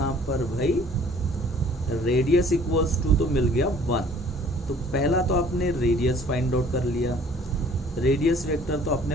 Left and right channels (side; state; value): both; normal; correlation 0.54